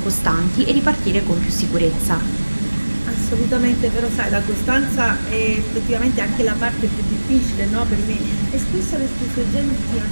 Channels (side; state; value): both; inverted; correlation -1.00